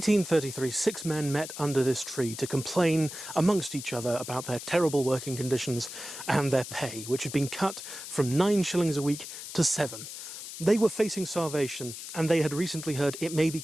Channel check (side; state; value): left; noise; hiss, 10 dB below the sound